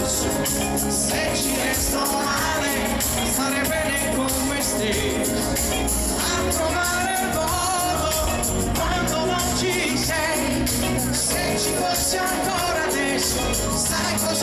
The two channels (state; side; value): identical; both; correlation 1.00